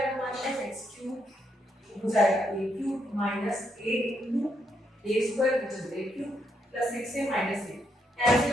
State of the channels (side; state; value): both; normal; correlation 0.77